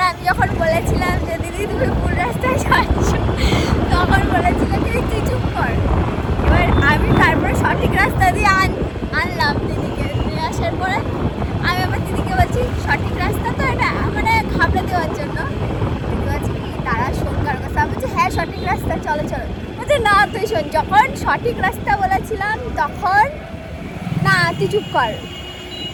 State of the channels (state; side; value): identical; both; correlation 1.00